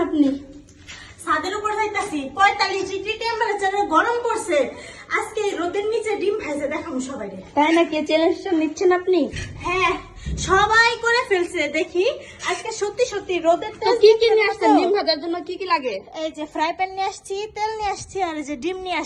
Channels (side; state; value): both; identical; correlation 1.00